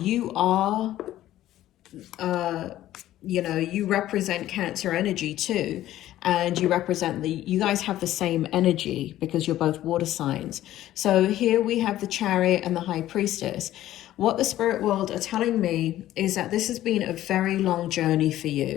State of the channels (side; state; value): right; quieter; 13.8 dB